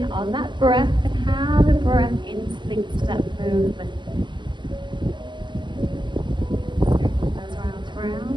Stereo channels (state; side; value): late; left; 0.22 ms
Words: on that breath and how the breath interlinks to that movement.